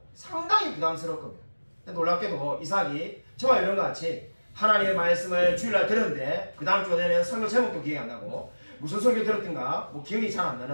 상당히 부담스러울 겁니다. 놀랍게도 이삭이 저와 이런 것 같이 하나님의 말씀을 주일날 들었는데 그 다음 주가 되면 설교 제목도 기억이 안 나고 무슨 설교 들었던가 뭐 기억이 잘 안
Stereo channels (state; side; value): inverted; both; correlation -1.00